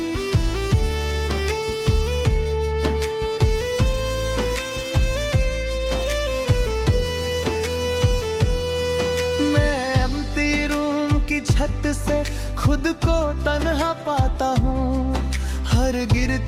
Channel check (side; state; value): both; identical; correlation 1.00